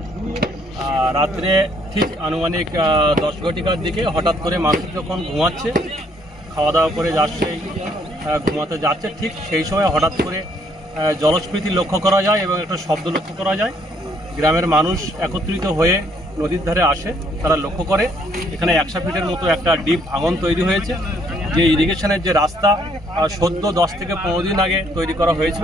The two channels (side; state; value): both; normal; correlation 0.67